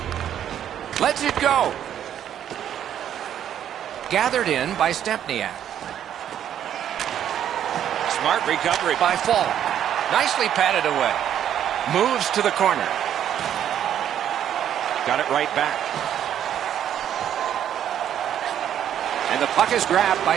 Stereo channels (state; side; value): quieter; left; 10.2 dB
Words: Lets it go. Gathered in by Stempniak. Smart recovery by Fall. Nicely patted away. Moves to the corner. Got it right back. And the puck is grabbed